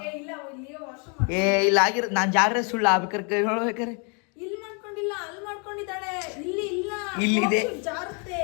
ಇಲ್ಲ ಆಗಿರೋ ನಾನು ಜಾಗ್ರೆ ಸುಳ್ಳು ಆಗ್ಬೇಕಾರೆ ಹೇಳ್ಬೇಕಾರೆ ಇಲ್ಲಿದೆ.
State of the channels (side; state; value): right; quieter; 36.7 dB